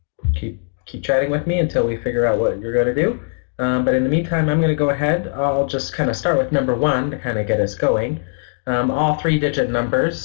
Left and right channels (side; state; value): right; silent; digital silence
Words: chatting with me until we figure out what you're going to do. But in the meantime, I'm going to go ahead. I'll just kind of start with number 1 to kind of get us going. All 3-digit